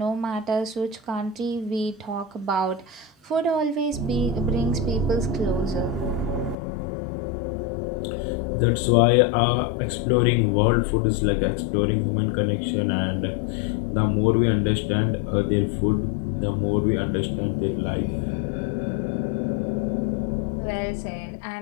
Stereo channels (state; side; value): drops out; right; at 6.6 s